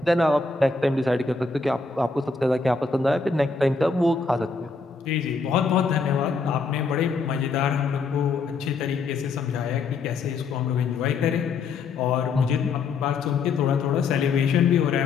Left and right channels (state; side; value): quieter; right; 4.5 dB